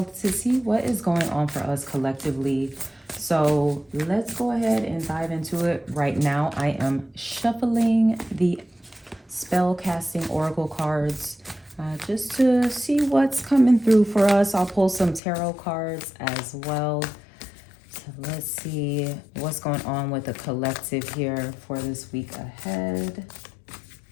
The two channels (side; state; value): right; drops out; at 15.2 s